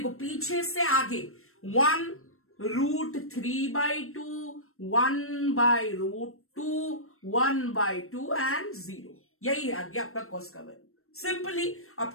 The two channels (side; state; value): right; late; 0.62 ms